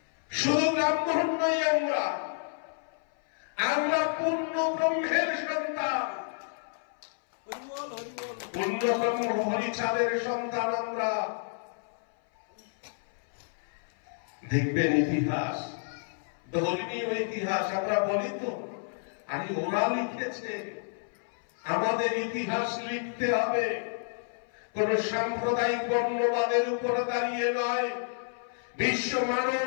শুধু ব্রাহ্মণ নই, আমরা পূর্ণ ব্রহ্মের সন্তান, পূর্ণ ব্রহ্ম হরিচাঁদের সন্তান আমরা। দেখবেন ইতিহাস, ধর্মীয় ইতিহাস আমরা বলি তো, আরে ওরা লিখেছে, আমাদের ইতিহাস লিখতে হবে। কোন সাম্প্রদায়িক বর্ণবাদের উপরে দাঁড়িয়ে নয়, বিশ্ব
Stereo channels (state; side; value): silent; right; 58 dB below the other